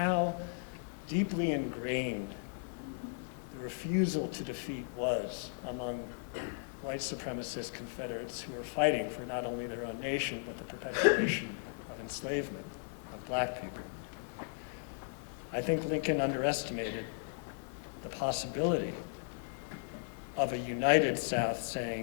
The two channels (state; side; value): silent; right; 54 dB below the other